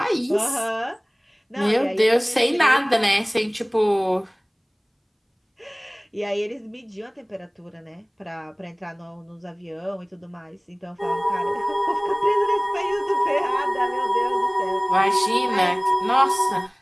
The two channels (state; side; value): identical; both; correlation 1.00